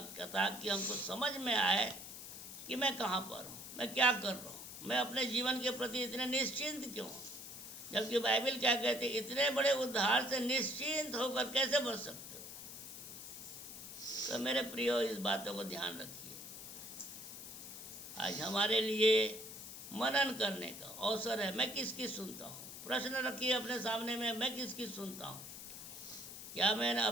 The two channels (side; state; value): left; noise; hiss, 11 dB below the sound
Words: ताकि हमको समझ में आए कि मैं कहाँ पर हूँ, मैं क्या कर रहा हूँ, मैं अपने जीवन के प्रति इतने निश्चिंत क्यों। जबकि बाइबल क्या कहते हैं, इतने बड़े उद्धार से निश्चिंत होकर कैसे बच सकते हो। तो मेरे प्रियो इस बातों को ध्यान रखिए। आज हमारे लिए मनन करने का अवसर है। मैं किसकी सुनता हूँ? प्रश्न रखिए अपने सामने में, मैं किसकी सुनता हूँ? क्या मैंने